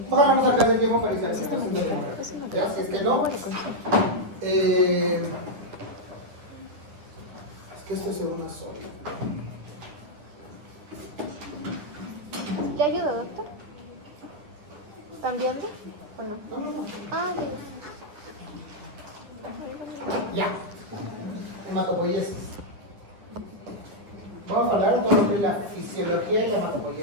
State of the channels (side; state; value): left; late; 9.6 ms